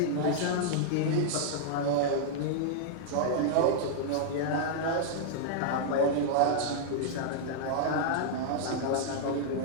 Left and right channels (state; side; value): different; both; correlation -0.01